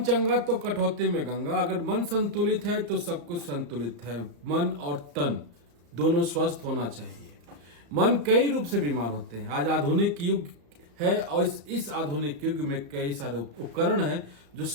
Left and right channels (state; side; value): late; left; 35 ms